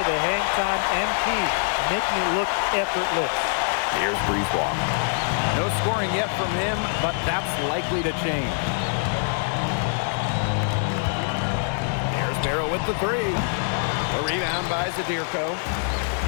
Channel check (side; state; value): right; silent; 62 dB below the other